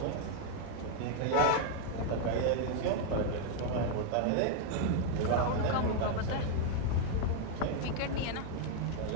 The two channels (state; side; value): different; both; correlation 0.00